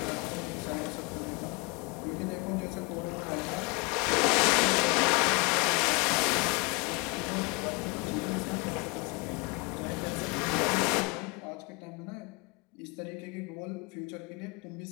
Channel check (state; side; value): quieter; right; 28.6 dB